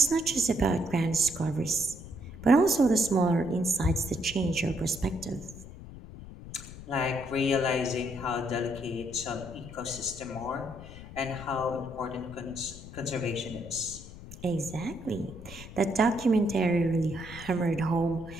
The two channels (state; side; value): noise; left; rumble, 14 dB below the sound